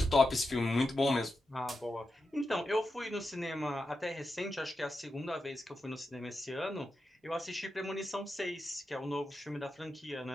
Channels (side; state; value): both; normal; correlation 0.89